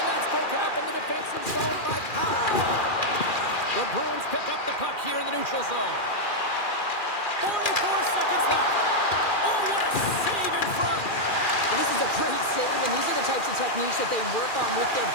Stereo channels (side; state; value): right; late; 2.4 ms